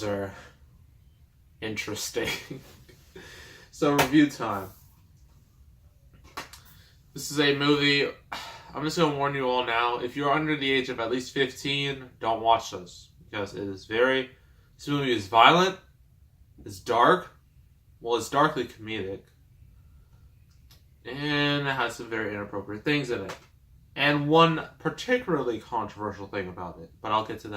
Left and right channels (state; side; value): identical; both; correlation 1.00